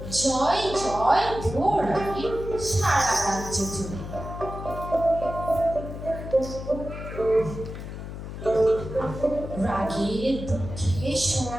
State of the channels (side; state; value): left; noise; hum, 9 dB below the sound